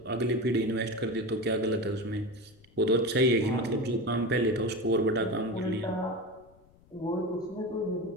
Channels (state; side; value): noise; left; rumble, 28 dB below the sound